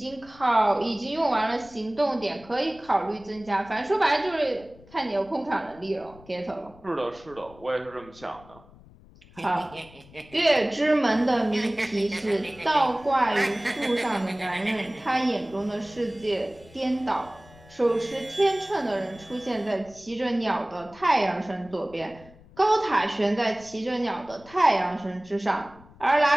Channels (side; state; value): left; noise; rumble, 23 dB below the sound